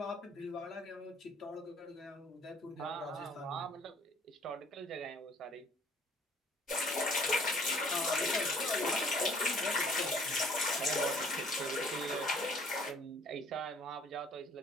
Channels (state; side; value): normal; both; correlation 0.57